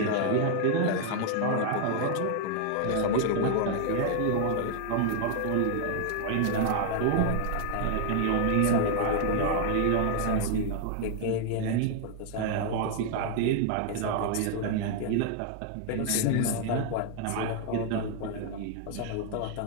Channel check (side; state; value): both; different; correlation 0.00